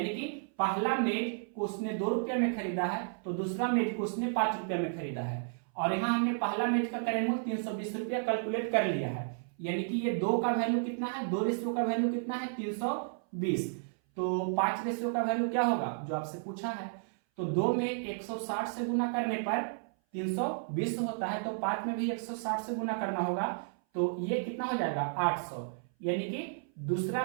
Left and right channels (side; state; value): left; silent; 56 dB below the other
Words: कि पहला मेज को उसने 2 रुपये में खरीदा है, तो दूसरा मेज को उसने 5 रुपये में खरीदा है। और यहाँ हमने पहला मेज का क्रय मूल्य 320 रुपया कैलकुलेट कर लिया है, यानी कि ये 2 का वैल्यू कितना है, 2 रेशियो का वैल्यू कितना है 320, तो 5 रेशियो का वैल्यू क्या होगा जो आपसे पूछा है। तो 2 में 160 से गुना करने पर 320 होता है, तो 5 में भी 160 से गुना करना होगा, तो ये कितना हो जाएगा 800, यानी कि